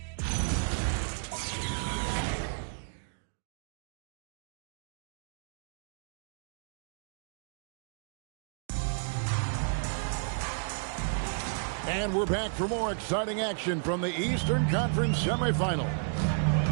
And we're back for more exciting action from the Eastern Conference semifinal.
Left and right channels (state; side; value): silent; left; digital silence